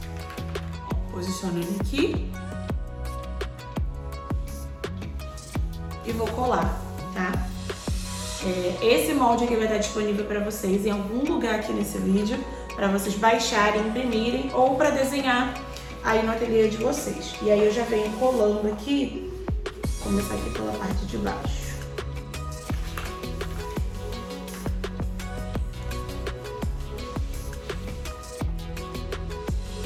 posiciono ele aqui e vou colar, tá? Esse molde aqui vai estar disponível para vocês em algum lugar aqui nesse vídeo, para vocês baixarem, imprimirem ou para desenhar aí no ateliê de vocês. E aí eu já venho colando aqui, vou começar aqui pela parte de baixo.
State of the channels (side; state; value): both; identical; correlation 1.00